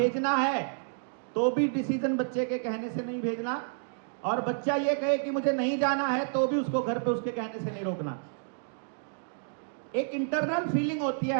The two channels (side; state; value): left; silent; digital silence